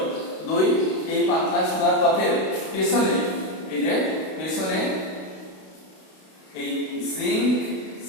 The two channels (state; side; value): late; right; 32 ms